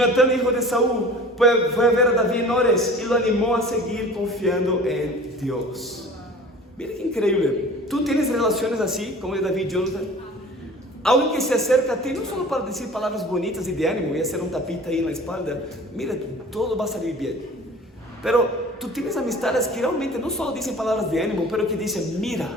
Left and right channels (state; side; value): normal; both; correlation 0.43